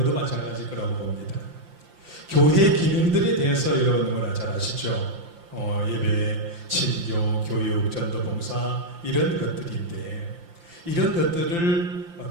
마찬가지일 거라고 봅니다. 교회 기능들에 대해서 여러분 너무나 잘 아시죠? 예배, 친교, 교육, 전도봉사 이런 것들인데 이런 것들을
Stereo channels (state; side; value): late; left; 5.8 ms